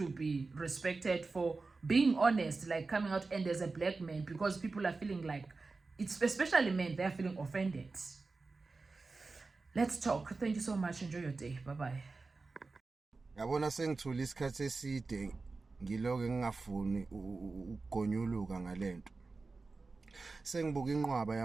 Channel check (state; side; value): quieter; left; 3.9 dB